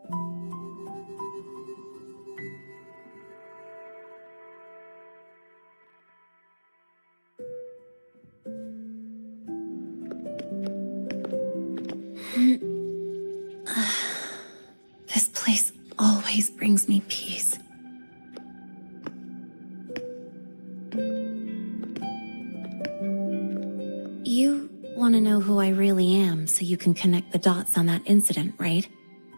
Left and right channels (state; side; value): inverted; both; correlation -1.00